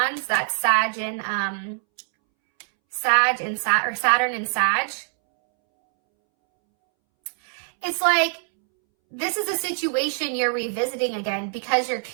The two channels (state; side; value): silent; left; 63 dB below the other